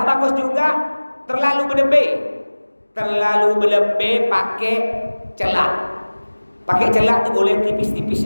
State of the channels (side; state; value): both; inverted; correlation -1.00